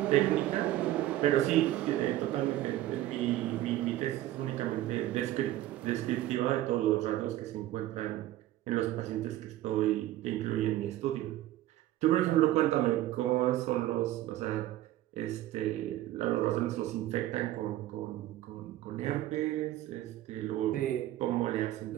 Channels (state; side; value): quieter; left; 14.6 dB